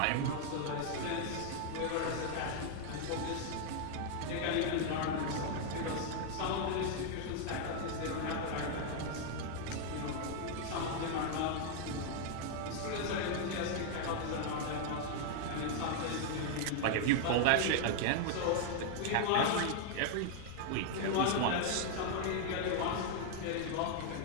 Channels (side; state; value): both; different; correlation 0.00